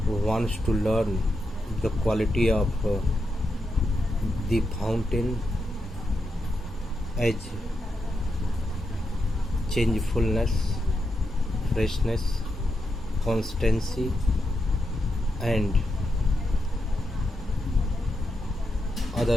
wants to learn the quality of the fountain as changefulness, freshness, constancy, and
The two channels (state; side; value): normal; both; correlation 0.85